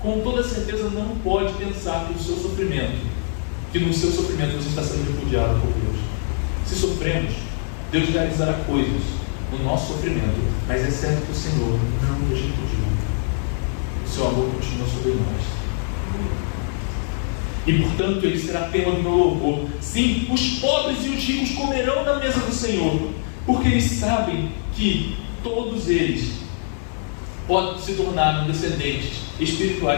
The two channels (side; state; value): right; silent; digital silence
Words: com toda certeza não pode pensar que no seu sofrimento você está sendo repudiado por Deus. Se sofremos, Deus realizará coisas no nosso sofrimento, mas é certo que o Senhor não nos repudiou. O seu amor continua sobre nós. E portanto ele será tema do meu louvor. Sim, os pobres e os ricos comerão da mesa do Senhor, porque eles sabem que todos eles se tornaram descendentes